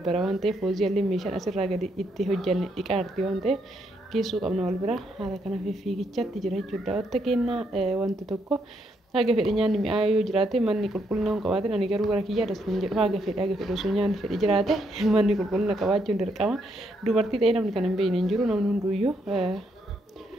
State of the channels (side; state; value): both; normal; correlation 0.76